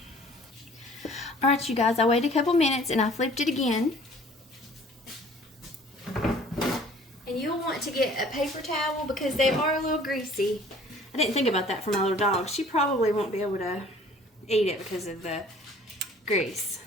Alright, you guys, I waited a couple minutes and I flipped it again. And you'll want to get a paper towel because they are a little greasy. I didn't think about that for my little dog. She probably won't be able to eat it because of the grease.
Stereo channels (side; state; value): both; normal; correlation 0.52